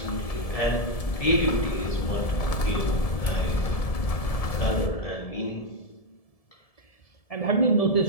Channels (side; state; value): right; late; 1.7 ms